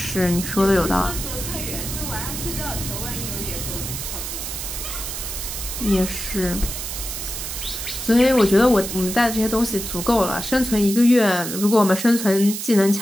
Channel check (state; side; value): noise; right; hiss, 6 dB below the sound